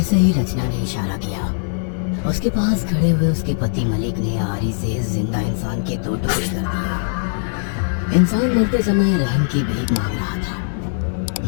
ही रचना ने इशारा किया, उसके पास खड़े हुए उसके पति मलिक ने आरी से जिंदा इंसान के 2 टुकड़े कर दिए। इंसान मरते समय रहम की भीख मांग रहा था,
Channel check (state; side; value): silent; right; 55 dB below the other